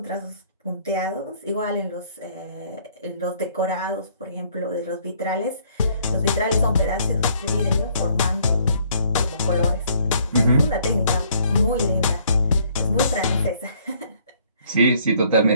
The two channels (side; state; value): both; inverted; correlation -0.63